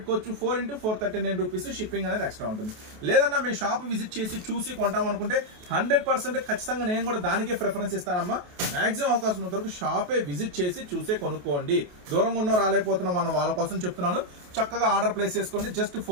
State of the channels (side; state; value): left; late; 28 ms